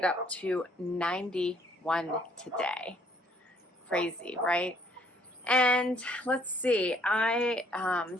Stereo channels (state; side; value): normal; both; correlation 0.64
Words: up to 91 today. Crazy, right? And let's see. I